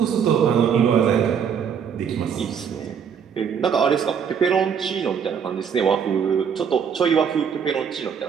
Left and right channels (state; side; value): quieter; left; 7.3 dB